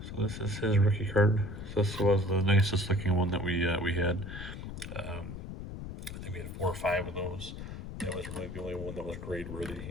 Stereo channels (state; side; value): noise; left; rumble, 9 dB below the sound